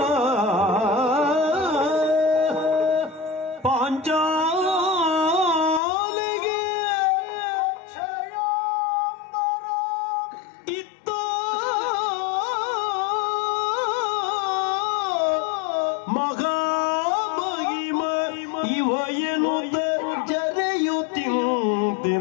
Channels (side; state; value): right; drops out; at 5.8 s